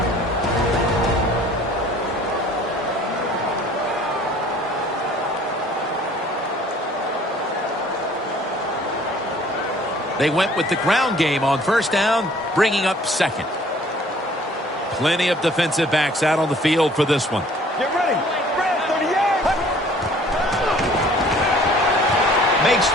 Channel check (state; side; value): normal; both; correlation 0.54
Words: They went with the ground game on 1st down, bringing up 2nd. Plenty of defensive backs out on the field for this one. Get ready. Brad, 30 yards. Makes